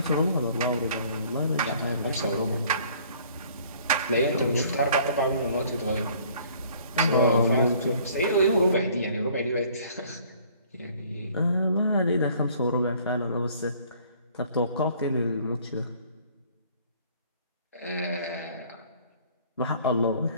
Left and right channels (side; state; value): both; inverted; correlation -0.56